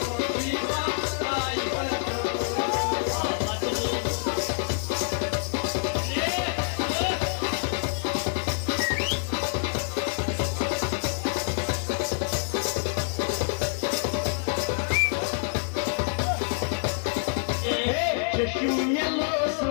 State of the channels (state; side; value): silent; right; digital silence